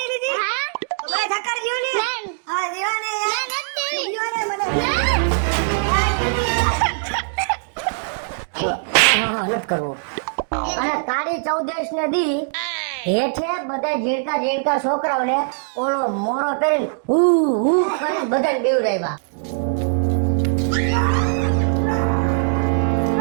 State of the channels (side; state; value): left; silent; digital silence